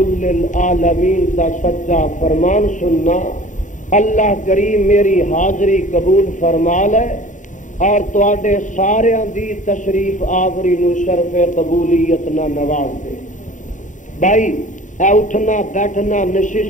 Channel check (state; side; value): late; right; 0.36 ms